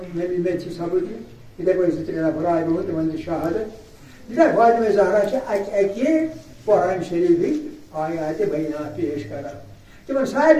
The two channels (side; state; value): both; identical; correlation 1.00